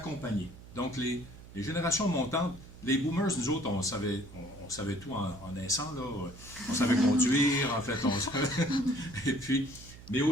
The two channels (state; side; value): noise; right; hum, 18 dB below the sound